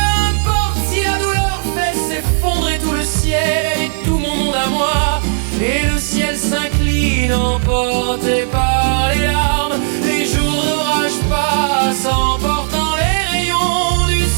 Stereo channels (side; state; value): left; silent; 64 dB below the other